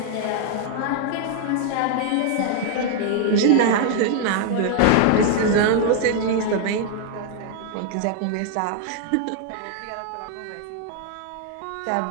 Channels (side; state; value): both; different; correlation 0.00